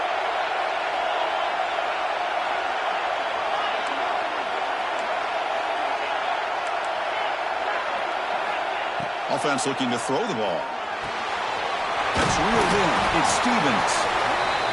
Offense looking to throw the ball. That's reeled in. It's Stevens.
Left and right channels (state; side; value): identical; both; correlation 1.00